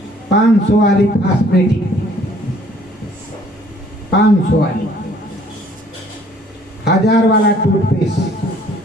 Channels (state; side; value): normal; both; correlation 0.58